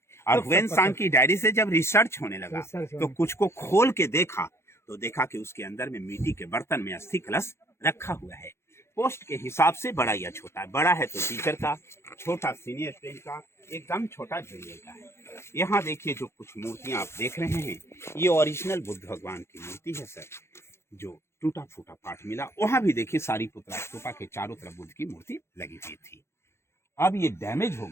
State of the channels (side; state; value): right; late; 0.13 ms